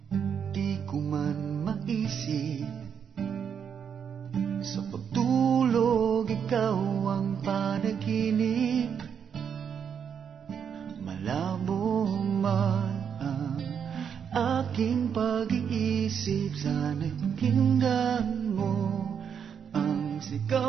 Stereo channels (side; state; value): left; quieter; 7.5 dB